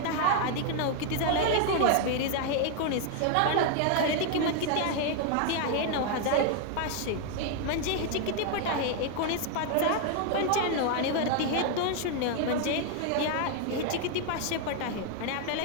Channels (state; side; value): different; both; correlation 0.00